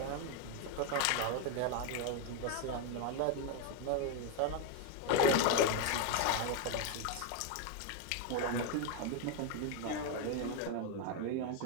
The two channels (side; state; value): both; different; correlation 0.01